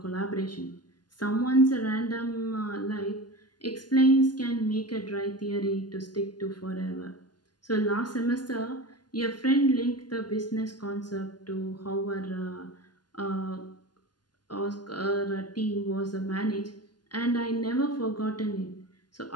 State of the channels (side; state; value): right; late; 0.70 ms